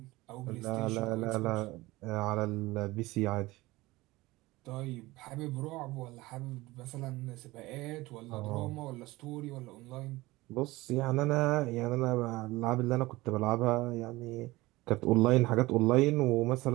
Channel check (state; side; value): quieter; left; 19.9 dB